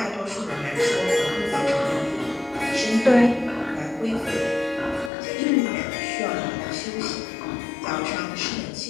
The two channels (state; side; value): drops out; right; at 5.1 s